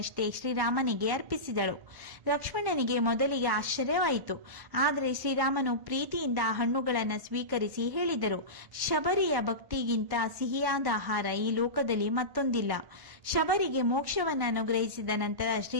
ಶ್ರೀರಾಮನಿಗೆ ಅರ್ಪಿಸಿದಳು. ಲಕ್ಷ್ಮಣನಿಗೆ ಮೊದಲಿಗೆ ಆಶ್ಚರ್ಯವಾಯಿತು. ಆದರೆ ಶ್ರೀರಾಮನು ಪ್ರೀತಿಯಿಂದ ಆ ಹಣ್ಣುಗಳನ್ನು ಸ್ವೀಕರಿಸಿ ಹೇಳಿದರು, ಶಬರಿಯ ಭಕ್ತಿಗಿಂತ ಸಿಹಿಯಾದ ಆಹಾರ ಈ ಲೋಕದಲ್ಲಿ ಮತ್ತೊಂದಿಲ್ಲ. ಶಬರಿಗೆ ಮೋಕ್ಷವನ್ನು ಅನುಗ್ರಹಿಸಿದ ನಂತರ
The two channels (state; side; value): late; left; 1.1 ms